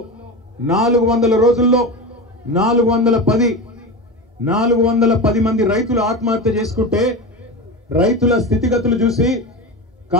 400 రోజుల్లో 410 మంది రైతులు ఆత్మహత్య చేసుకుంటే రైతుల స్థితిగతులు చూసి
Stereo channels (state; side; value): normal; both; correlation 0.24